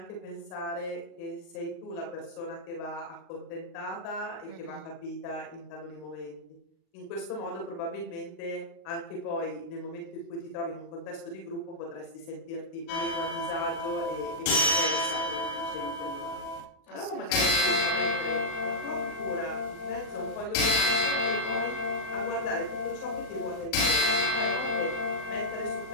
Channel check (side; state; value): right; late; 38 ms